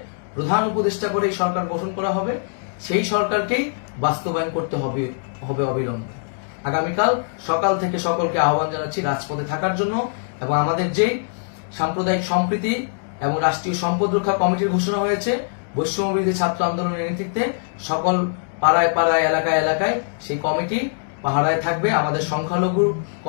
প্রধান উপদেষ্টা করে এই সরকার গঠন করা হবে, সেই সরকারকেই বাস্তবায়ন করতে হবে অবিলম্বে। আগামীকাল সকাল থেকে সকলকে আহ্বান জানাচ্ছি রাজপথে থাকার জন্য এবং আমাদের যে সাম্প্রদায়িক সম্প্রীতি এবং রাষ্ট্রীয় সম্পদ রক্ষা কমিটির ঘোষণা হয়েছে বৈষম্যবিরোধী ছাত্র আন্দোলনের নেতৃত্বে, সকল পাড়ায় পাড়ায় এলাকায় এলাকায় সেই কমিটি পাহারায় থাকবে। আমাদের সংখ্যালঘু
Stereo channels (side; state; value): right; silent; digital silence